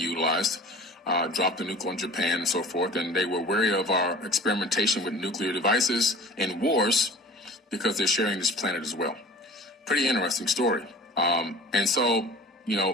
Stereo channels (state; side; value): normal; both; correlation 0.43